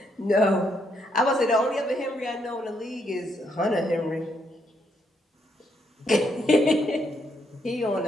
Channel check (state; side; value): normal; both; correlation 0.76